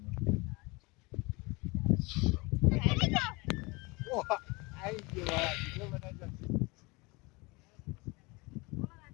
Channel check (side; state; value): right; quieter; 25.7 dB